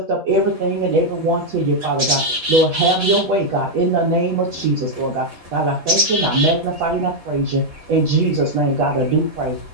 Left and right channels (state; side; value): late; left; 6.0 ms